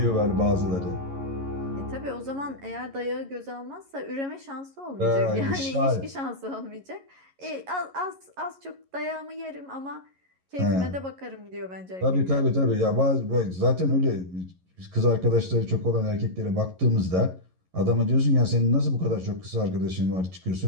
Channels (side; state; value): left; late; 11 ms